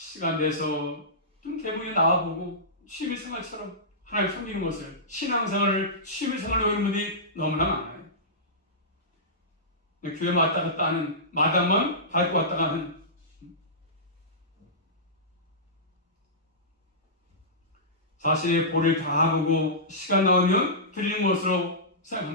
내서 좀 대문에 나와보고 취미생활처럼 하나님을 섬기는 것을 신앙생활을 취미생활로 하는 분들이 너무나 많아요. 교회 왔다 갔다 하는 마당만 밟고 왔다 가는 자신의 볼을 다 보고 시간 나오면 드리는 것으로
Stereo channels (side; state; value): both; normal; correlation -0.18